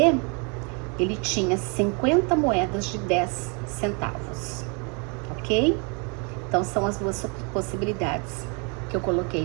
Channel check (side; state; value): left; quieter; 34.3 dB